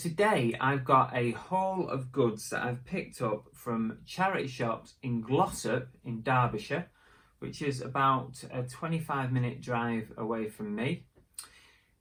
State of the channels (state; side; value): identical; both; correlation 1.00